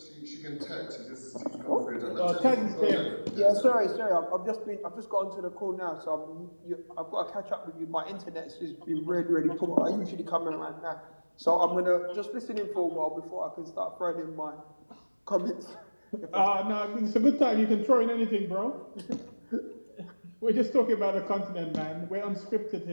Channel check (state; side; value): inverted; both; correlation -1.00